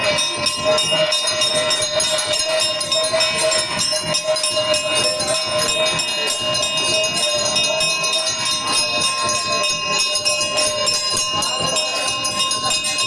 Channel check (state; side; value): identical; both; correlation 1.00